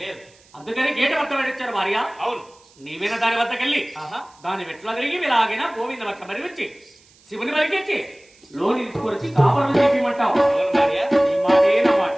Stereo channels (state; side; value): noise; right; hiss, 29 dB below the sound